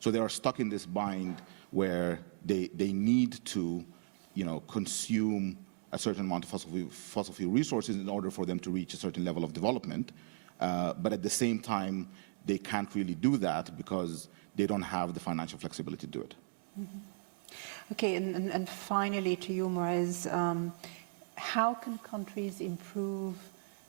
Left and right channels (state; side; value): silent; left; digital silence